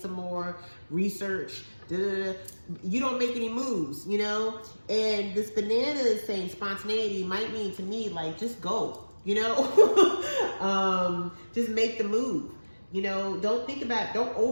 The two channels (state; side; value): inverted; both; correlation -1.00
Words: more, research, you don't make any moves, you know? And this banana is saying spontaneity might mean to me, like, just go, you know? Just make the move, you know? Don't think about it, don't